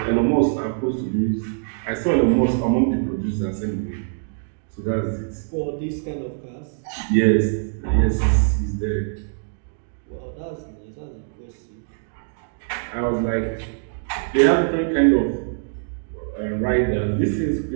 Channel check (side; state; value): left; silent; digital silence